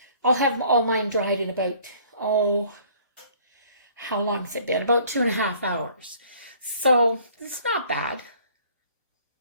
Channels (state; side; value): inverted; both; correlation -0.56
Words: I'll have all mine dried in about, how long has it been? About 2.5 hours. So it's not bad.